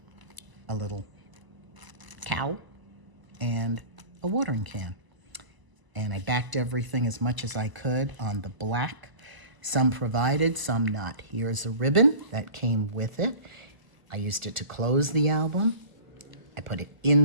a little cow, and a watering can. And I backed everything as much as I could on the black. Some provided, some not. Here's a ribbon that came with it. I used it to close the album. I put it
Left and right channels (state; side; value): late; left; 1.0 ms